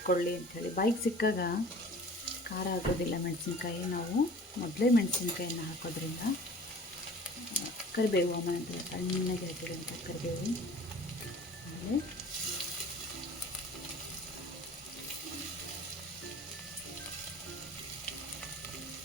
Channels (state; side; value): normal; both; correlation 0.45